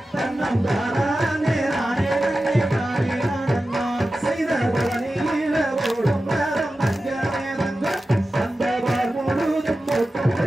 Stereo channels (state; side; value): normal; both; correlation 0.94